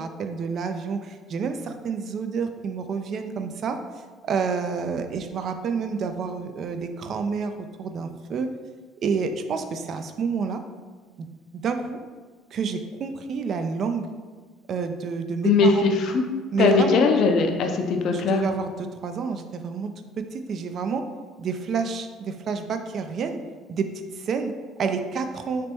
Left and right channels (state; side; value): normal; both; correlation 0.54